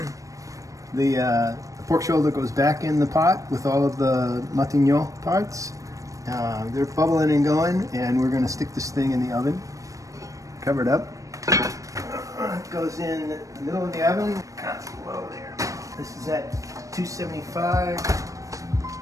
The pork shoulder goes back in the pot with all of the Matignon parts. They're bubbling and going, and we're going to stick this thing in the oven. Cover it up. It goes in the middle of the oven. Constant low there. This is at 275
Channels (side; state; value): left; late; 0.16 ms